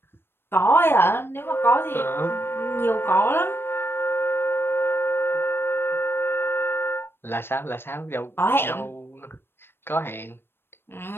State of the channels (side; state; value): right; late; 0.11 ms